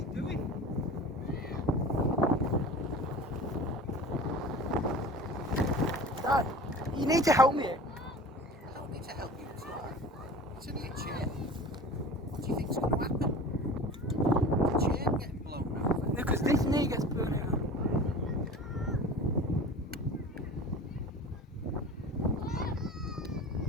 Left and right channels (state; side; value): normal; both; correlation 0.38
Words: doing? Dad, you need to help me. I don't need to help you at all. It's only a chair. What do you think's going to happen? The chair getting blown over. No, because this knee gets blown out.